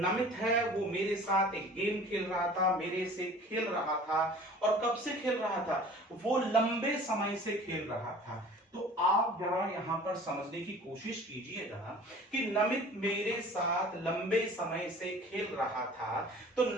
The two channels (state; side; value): normal; both; correlation 0.45